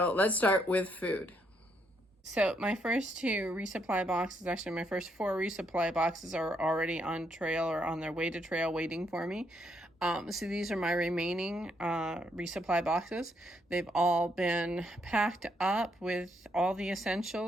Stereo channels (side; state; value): both; normal; correlation 0.75